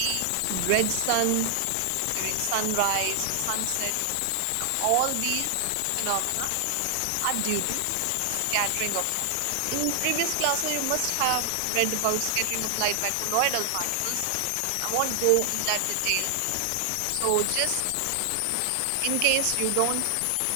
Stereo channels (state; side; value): different; both; correlation 0.00